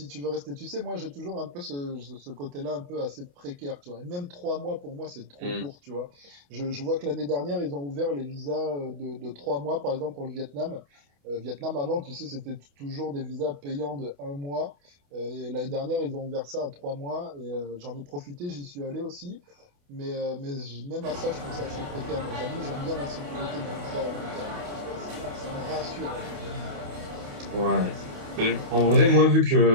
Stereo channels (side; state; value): left; late; 28 ms